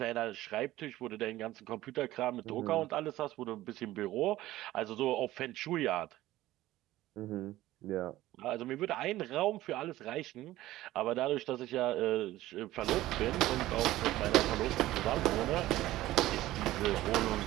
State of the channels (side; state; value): left; quieter; 15.9 dB